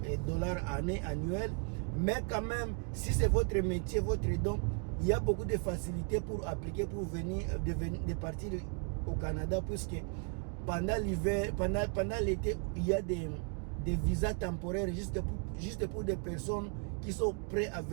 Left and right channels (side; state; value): left; quieter; 37.2 dB